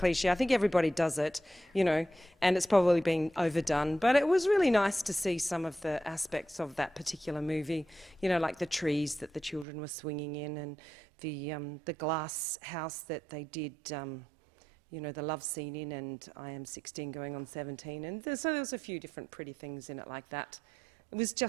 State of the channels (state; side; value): drops out; left; at 9.7 s